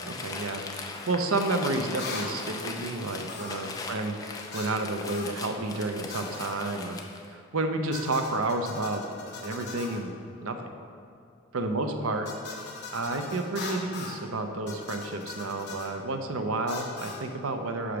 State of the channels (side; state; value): both; normal; correlation 0.12